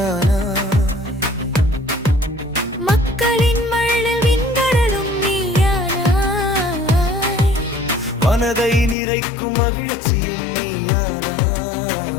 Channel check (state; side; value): drops out; right; at 9.0 s